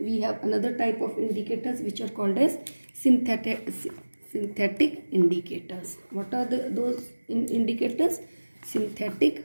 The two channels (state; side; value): inverted; both; correlation -1.00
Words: have another type of indicators which are called as synthetic indicators. What are those indicators? Synthetic